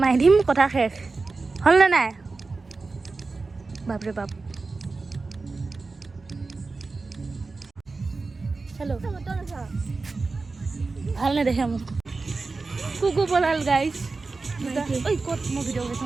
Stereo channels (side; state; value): left; quieter; 3.9 dB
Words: মাৰি দিম কথা শেষ হ'লনে নাই বাপৰে বাপ হেল্ল' ভাল নেদেখে মোক কুকু পলাল গাইজ ঐ ক'ত মই ভিডিঅ'